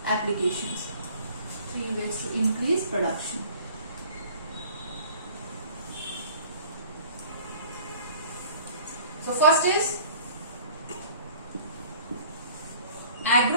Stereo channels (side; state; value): both; inverted; correlation -0.50